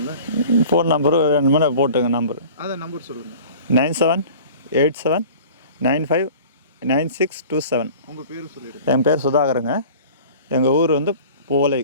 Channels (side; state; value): both; inverted; correlation -0.43